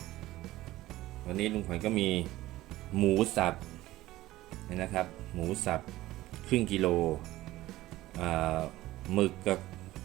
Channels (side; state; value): left; quieter; 16.5 dB